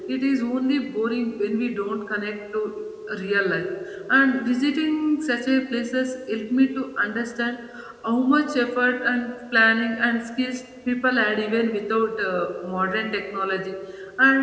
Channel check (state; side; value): identical; both; correlation 1.00